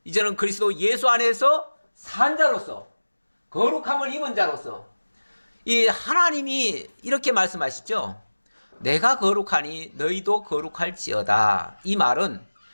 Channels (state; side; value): inverted; both; correlation -1.00